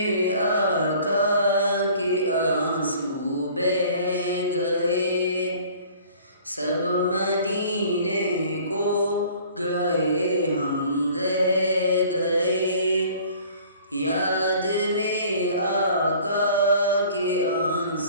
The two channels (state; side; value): inverted; both; correlation -0.51